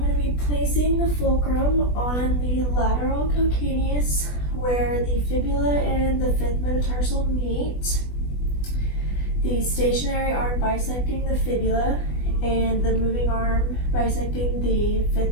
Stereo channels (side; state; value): right; late; 20 ms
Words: to be placing the fulcrum on the lateral calcaneus where the fibula and the fifth metatarsal meet. The stationary arm bisecting the fibula and the moving arm bisecting the fifth